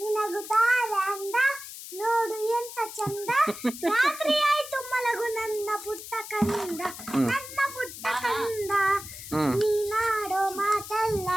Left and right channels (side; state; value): left; noise; hiss, 12 dB below the sound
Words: ಅಂದ ನೋಡು ಎಂತ ಚಂದ ರಾತ್ರಿ ಆಯ್ತು ಮಲಗು ನನ್ನ ಪುಟ್ಟ ಕಂದ ನನ್ನ ಪುಟ್ಟ ಕಂದ ನೀನಾಡೋ ಮಾತಲ್ಲ